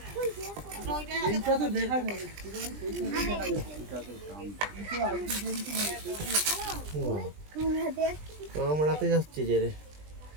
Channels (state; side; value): late; left; 20 ms